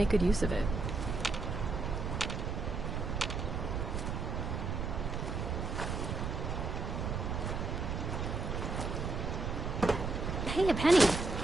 good use of it. Hey, a penny.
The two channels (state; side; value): noise; right; rumble, 2 dB below the sound